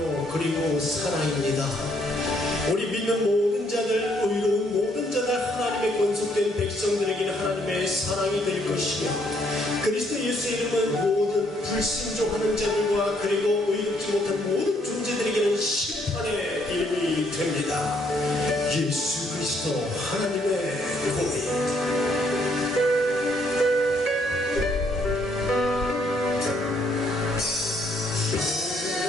그리고 사랑입니다. 우리 믿는 모든 자들, 의로운 모든 자들, 하나님의 권속된 백성들에게는 하나님의 사랑이 될 것이며, 그리스도 예수의 이름은 모든 불순종하는 자들과 그리고 의롭지 못한 모든 존재들에게는 심판의 이름이 됩니다. 예수 그리스도 하나님의 공의.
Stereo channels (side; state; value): both; normal; correlation 0.69